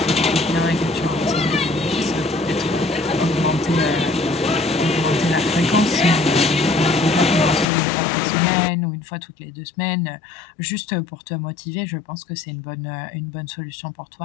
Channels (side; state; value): right; drops out; at 7.7 s